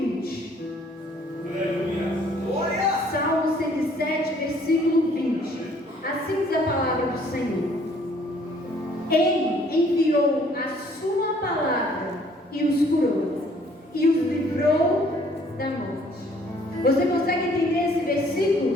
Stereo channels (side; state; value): both; normal; correlation 0.60